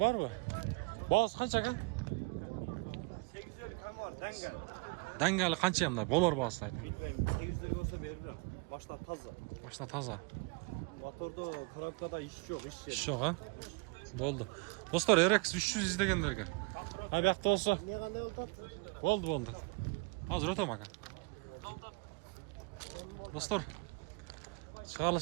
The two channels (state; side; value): quieter; left; 30.2 dB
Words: ба? Бағасы қанша қа? 850 кам бар, дәңгәл. Дәңгәлі қанша емді? Болар бағасы айтын. 850 болса берілем. Машина таза. Машина таза. Моторда, коробкада іш жоқ, іш Іш жоқ, Болды. Достар, RX 300 іздегендерге. Абияқты болса. Не қандай Болды. Азыр өтем аға. Достар,